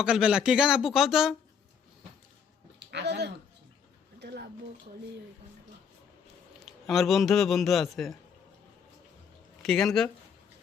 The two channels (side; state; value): right; quieter; 6.9 dB